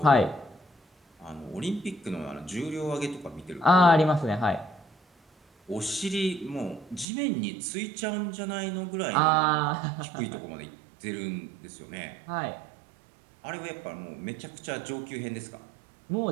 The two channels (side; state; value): left; drops out; at 7.1 s